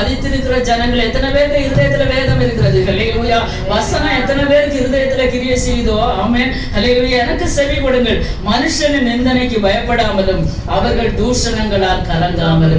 ஜனங்கள், எத்தனை பேருக்கு இருதயத்துல வேதம் இருக்கிறது? ஹல்லேலூயா. வசனம் எத்தனை பேருக்கு இருதயத்துல கிரியை செய்தோ? ஆமென். ஹல்லேலூயா. எனக்கு செவி கொடுங்கள். மனுஷனின் நிந்தனைக்கு பயப்படாமலும் அவர்கள் தூஷணங்களால்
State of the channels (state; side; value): identical; both; correlation 1.00